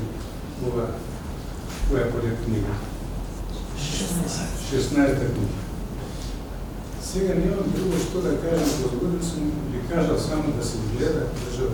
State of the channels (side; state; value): both; identical; correlation 1.00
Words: ова која поред книга. 16-та книга. Сега немам друго што да кажам, возгоден сум ви кажал само да се гледа